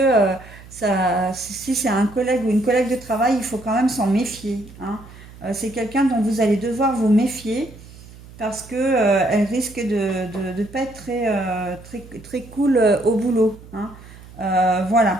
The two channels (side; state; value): right; noise; hum, 19 dB below the sound